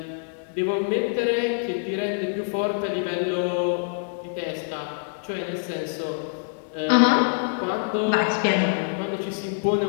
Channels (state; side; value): silent; right; digital silence